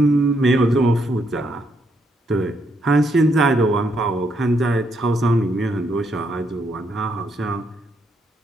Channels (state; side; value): normal; both; correlation 0.76